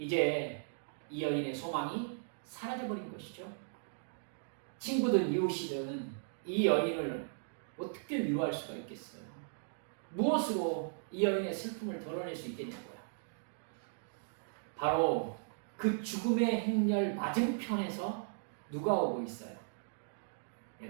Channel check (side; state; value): left; silent; digital silence